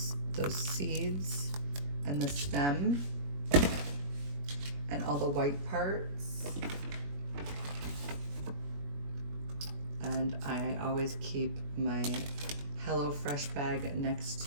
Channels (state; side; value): late; left; 21 ms